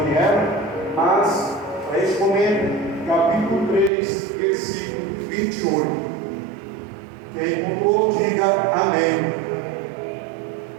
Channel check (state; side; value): drops out; left; at 3.9 s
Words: mas para este momento, capítulo 3, versículo 28. Quem encontrou, diga amém.